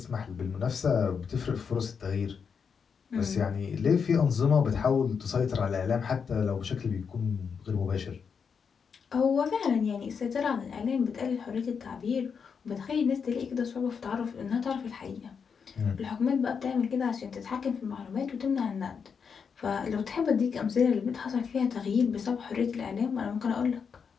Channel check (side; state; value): right; quieter; 6.3 dB